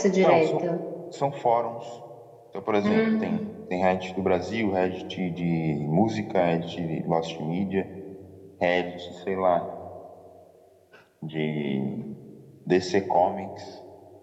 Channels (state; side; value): identical; both; correlation 1.00